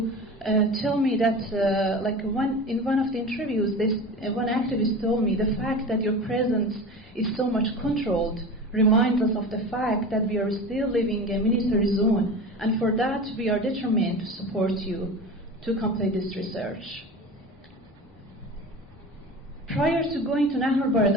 tell me that, in one of the interviews, one activist told me, the fact that your presence is so much controlled reminds us of the fact that we are still living in a military zone, and for that we are determined to support you to complete this research. Prior to going to Nahr al-Bared,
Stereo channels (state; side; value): normal; both; correlation 0.32